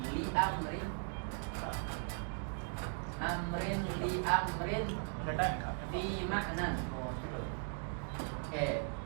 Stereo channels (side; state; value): left; silent; 52 dB below the other